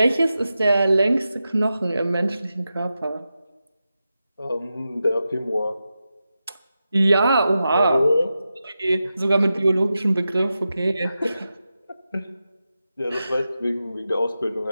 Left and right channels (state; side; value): inverted; both; correlation -0.91